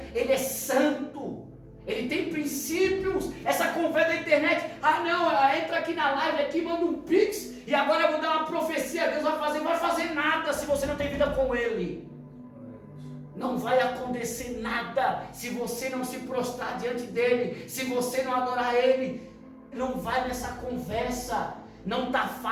é santo. Ele tem princípios. Essa conversa da internet, ela entra aqui na live, aqui manda um pix, e agora eu vou dar uma profecia, Deus vai fazer nada se você não tem vida com Ele. Não vai acontecer nada se você não se prostrar diante dEle, se você não adorar Ele. Não vai nessa conversa, não está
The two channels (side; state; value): both; identical; correlation 1.00